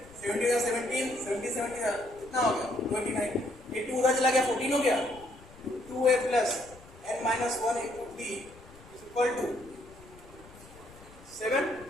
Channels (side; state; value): left; noise; rumble, 22 dB below the sound